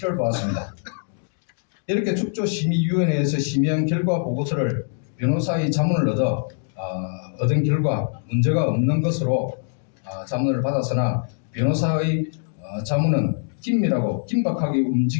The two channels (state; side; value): silent; right; digital silence